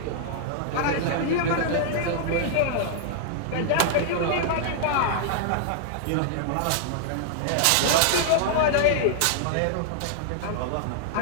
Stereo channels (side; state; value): both; different; correlation -0.01